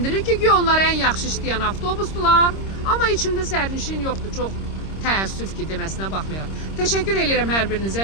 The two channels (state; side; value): late; right; 26 ms